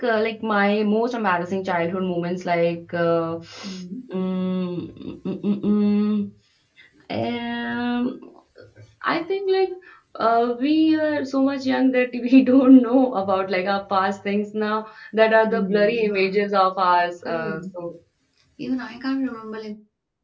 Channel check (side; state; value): both; identical; correlation 1.00